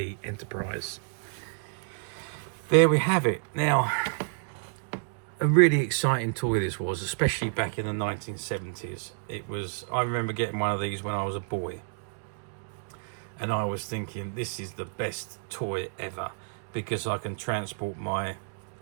Enterprise. There we have it. Now, a really exciting toy this was, especially back in the 1970s. I remember getting one of these when I was a boy. And I was thinking, this is the best toy ever, because I can transport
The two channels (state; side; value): silent; left; digital silence